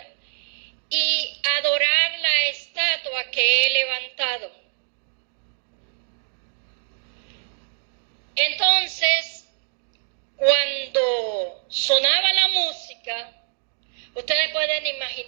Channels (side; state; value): left; silent; digital silence